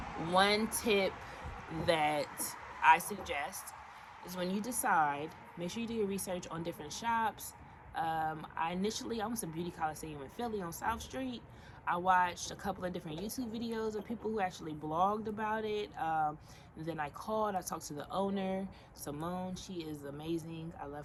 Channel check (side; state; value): both; identical; correlation 1.00